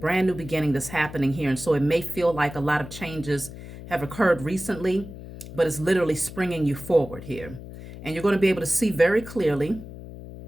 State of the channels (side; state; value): left; noise; hum, 13 dB below the sound